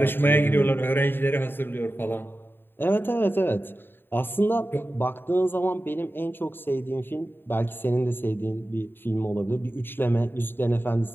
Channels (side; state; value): right; late; 0.099 ms